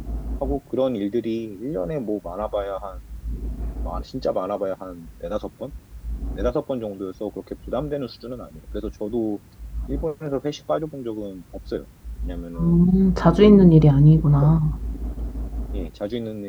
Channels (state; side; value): identical; both; correlation 1.00